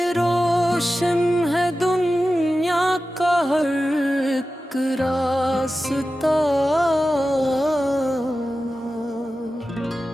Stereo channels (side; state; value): both; normal; correlation 0.94